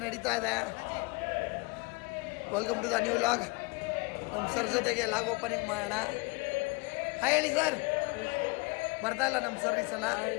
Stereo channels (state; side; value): quieter; right; 26.7 dB